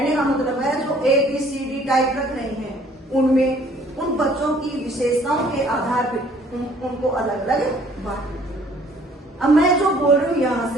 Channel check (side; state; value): both; normal; correlation 0.58